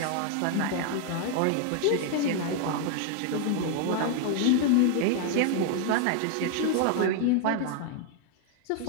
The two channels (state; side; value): different; both; correlation 0.00